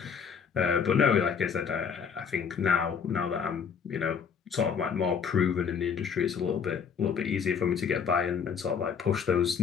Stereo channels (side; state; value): right; quieter; 6.7 dB